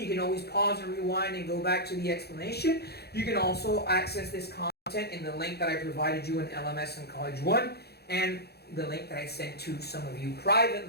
can always pause and rewind and go back to the explanation. You can also access this content in the link that I provided you in LMS and College 1, and the link that I sent to some of you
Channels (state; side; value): late; right; 0.47 ms